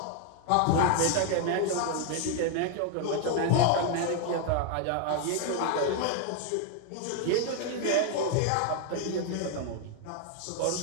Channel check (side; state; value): both; different; correlation 0.00